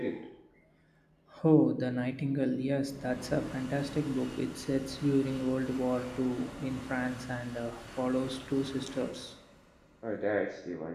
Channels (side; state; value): both; identical; correlation 1.00